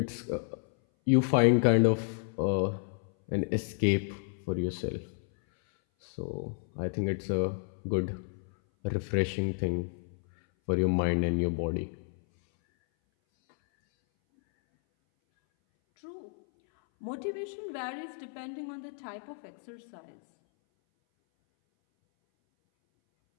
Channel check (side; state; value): right; silent; 57 dB below the other